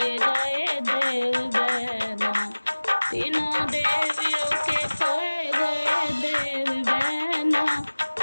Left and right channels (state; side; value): inverted; both; correlation -1.00